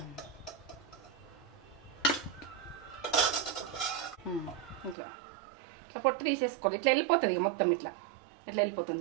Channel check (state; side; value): drops out; left; at 5.0 s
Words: ఇట్లా ఇట్లా పొట్టు తీసేసుకోవాలి. ఇట్లా వెళ్ళిపోతుంది. ఇక మొత్తం ఇట్లా వెళ్ళిపోతుంది.